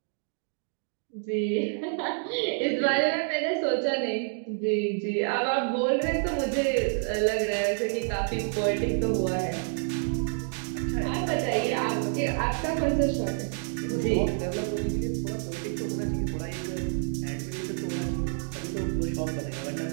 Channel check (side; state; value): left; silent; 59 dB below the other